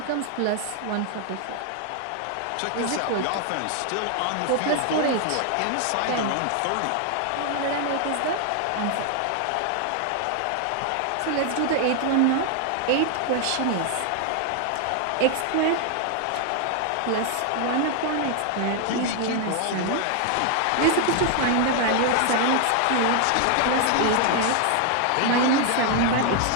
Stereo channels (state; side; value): different; both; correlation 0.00